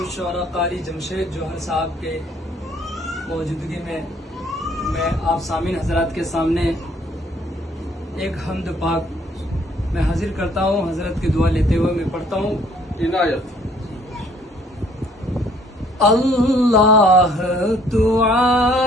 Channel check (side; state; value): both; normal; correlation 0.61